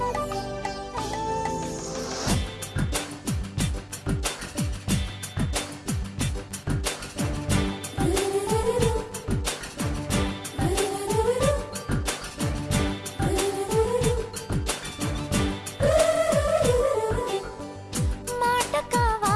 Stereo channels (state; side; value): identical; both; correlation 1.00